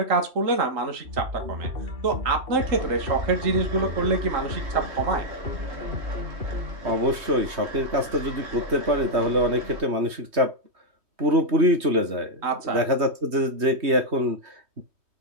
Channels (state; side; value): late; left; 3.2 ms